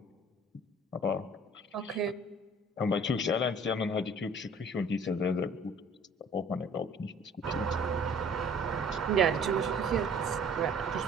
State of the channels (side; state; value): both; normal; correlation 0.51